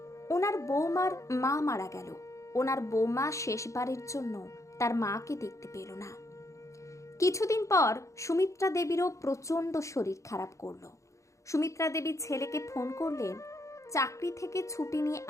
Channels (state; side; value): late; right; 0.15 ms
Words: ওনার বৌমার মা মারা গেল, ওনার বৌমা শেষবারের জন্য তার মাকে দেখতে পেল না। কিছুদিন পর সুমিত্রা দেবীরও প্রচণ্ড শরীর খারাপ করলো। সুমিত্রা দেবী ছেলেকে ফোন করলেন চাকরি থেকে ছুটি নিয়ে